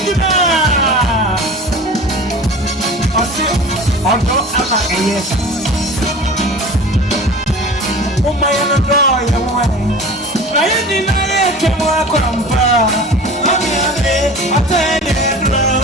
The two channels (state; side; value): normal; both; correlation 0.38